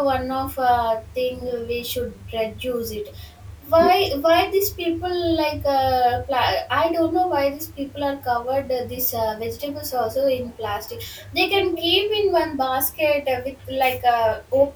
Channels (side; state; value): both; identical; correlation 1.00